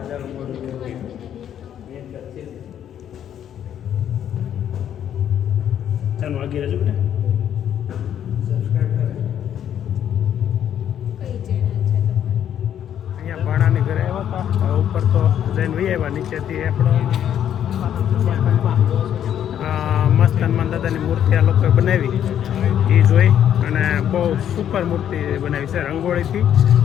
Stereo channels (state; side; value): quieter; right; 9.9 dB